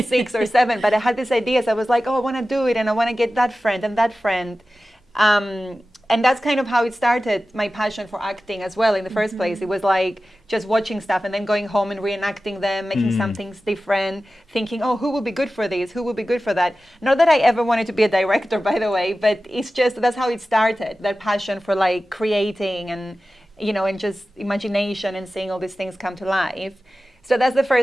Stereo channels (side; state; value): both; normal; correlation 0.95